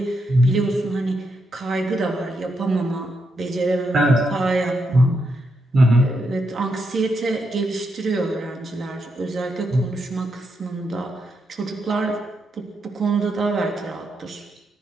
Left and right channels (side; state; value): both; normal; correlation 0.82